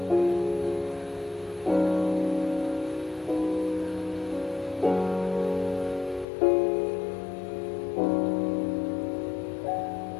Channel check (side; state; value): right; drops out; at 6.2 s